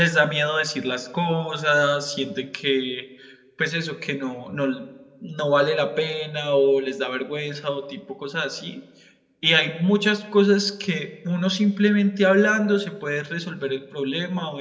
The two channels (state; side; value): identical; both; correlation 1.00